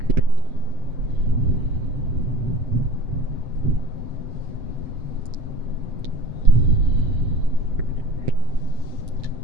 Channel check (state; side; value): late; left; 7.8 ms